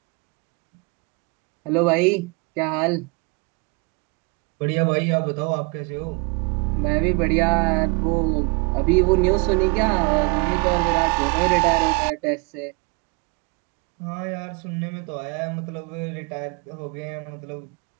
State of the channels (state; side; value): quieter; left; 31.7 dB